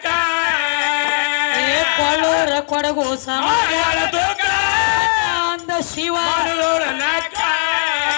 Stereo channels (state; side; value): silent; right; digital silence